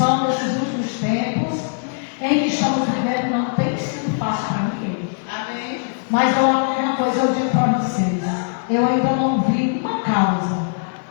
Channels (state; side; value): silent; right; digital silence